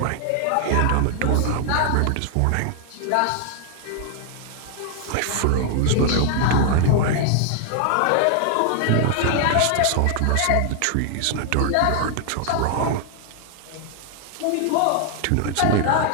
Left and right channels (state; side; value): different; both; correlation 0.00